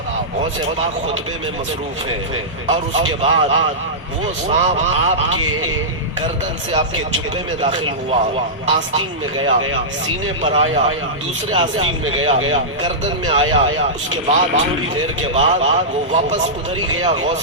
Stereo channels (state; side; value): normal; both; correlation -0.14